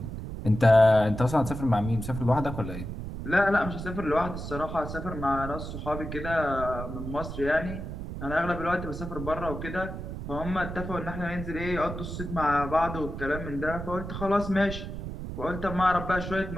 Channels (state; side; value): noise; right; rumble, 7 dB below the sound